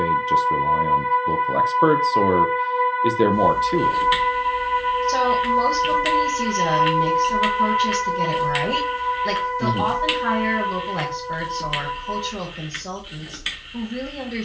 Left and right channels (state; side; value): identical; both; correlation 1.00